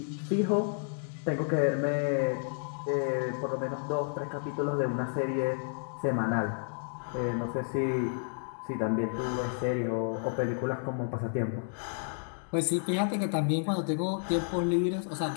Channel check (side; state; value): right; silent; 57 dB below the other